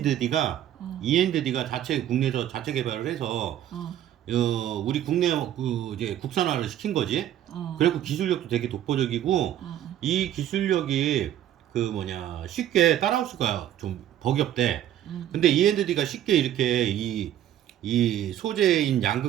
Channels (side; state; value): left; quieter; 11.5 dB